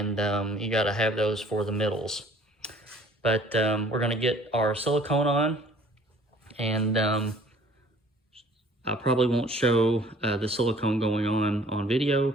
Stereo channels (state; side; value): normal; both; correlation 0.54